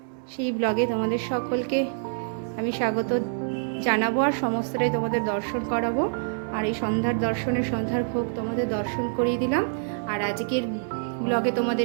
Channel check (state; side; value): silent; left; digital silence